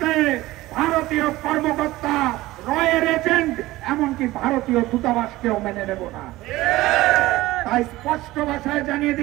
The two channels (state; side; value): quieter; left; 17.9 dB